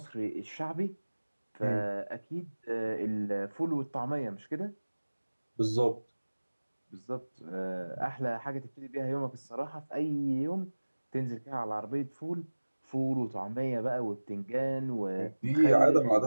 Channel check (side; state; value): both; inverted; correlation -1.00